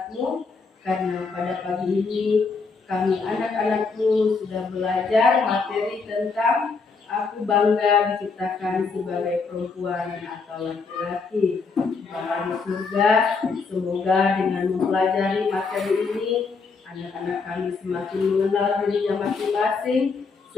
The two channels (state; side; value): quieter; right; 4.6 dB